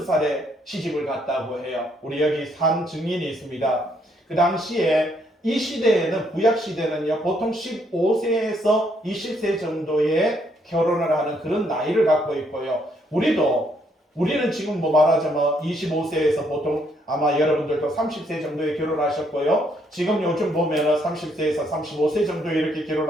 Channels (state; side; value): normal; both; correlation 0.71